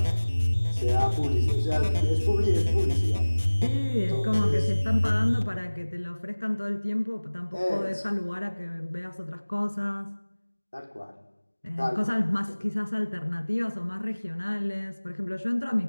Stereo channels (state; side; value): inverted; both; correlation -1.00